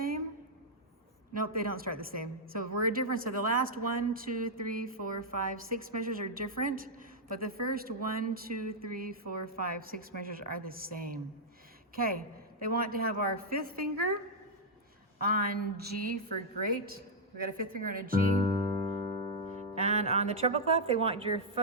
Nope, they don't start the same. So we're different. So the last 1, 2, 3, 4, 5, 6 measures are different, but the first 1, 2, 3, 4, 5, 6 measures are the same. Okay, they want to have our 5th finger on G for great. We got a 5th finger on a G. And on the treble clef, they want your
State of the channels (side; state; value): both; normal; correlation -0.05